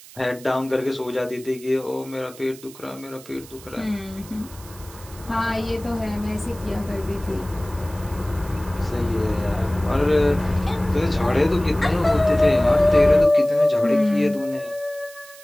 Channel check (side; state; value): right; noise; hiss, 20 dB below the sound